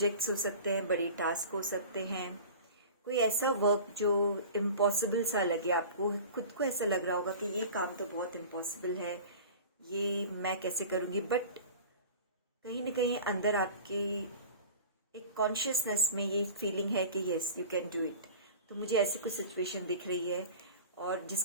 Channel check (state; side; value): inverted; both; correlation -0.38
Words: हो सकते हैं, बड़े टास्क हो सकते हैं, कोई ऐसा वर्क जो इम्पॉसिबल सा लगे आपको, खुद को ऐसा लग रहा होगा कि ये काम तो बहुत इम्पॉसिबल है, ये मैं कैसे करूँगी। बट कहीं ना कहीं अंदर आपकी एक कॉन्शियसनेस में ये फीलिंग है कि yes you can do it. तो मुझे ऐसी कुछ सिचुएशन दिख रही है और